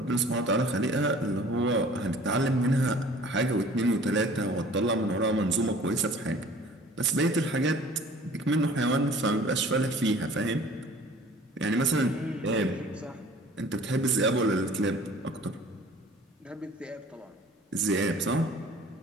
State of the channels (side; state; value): both; normal; correlation 0.49